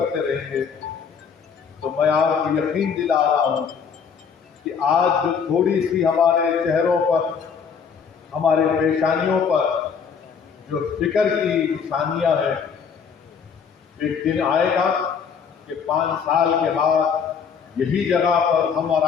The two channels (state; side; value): quieter; right; 6.5 dB